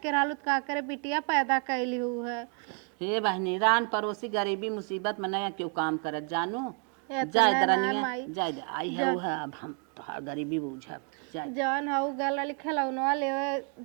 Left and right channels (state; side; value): quieter; left; 37.6 dB